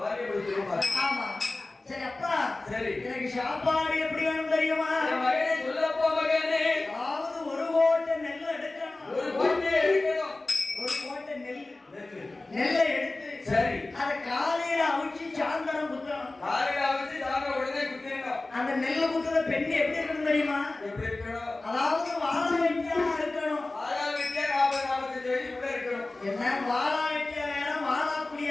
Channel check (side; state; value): right; quieter; 3.0 dB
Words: பிடிச்சிருப்பா. ஆமா. சரி அப்பா. சரி. எனக்கு சாப்பாடு எப்படி வேணும் தெரியுமா? மகனே சொல்லப்பா மகனே. அதாவது 1 கோட்டை நெல் எடுக்கணும். 1 கோட்டை எடுக்கணும். 1 கோட்டை நெல்லை எடுத்து சரி. அத காலையில அவிச்சு சாயந்தரம் குத்தணும். காலையில அவிச்சு சாயந்தரம் உடனே குத்திடணும். அந்த நெல்லை குத்துற பெண்ணு எப்படி இருக்கணும் தெரியுமா? எப்படி இருக்கணும்? அதாவது வாழ வெட்டியா இருக்கணும். வாழ வெட்டியா 40-45 வயசு கூட இருக்கணும். என்ன வாழ வெட்டியா வேற, வாழா